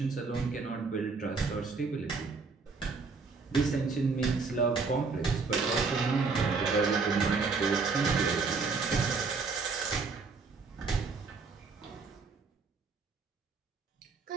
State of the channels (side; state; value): left; quieter; 4.6 dB